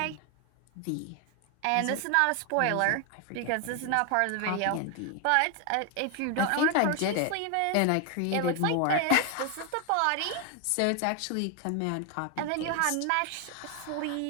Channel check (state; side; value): different; both; correlation 0.01